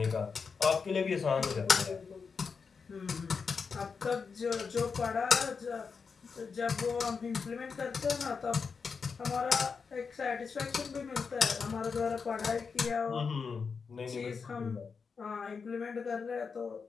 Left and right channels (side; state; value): right; quieter; 5.4 dB